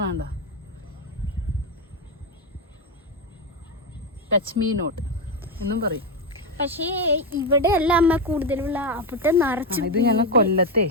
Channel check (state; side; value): normal; both; correlation 0.10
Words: ടച്ച് മീ നോട്ട് എന്നും പറയും. പക്ഷേ ഇവിടെ അല്ല അമ്മ കൂടുതലുള്ള അവിടെ നിറച്ച്. ഇത് ഞങ്ങൾ കൊല്ലത്തെ